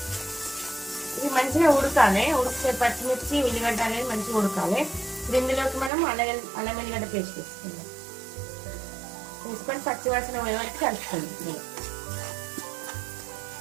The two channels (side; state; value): left; drops out; at 5.9 s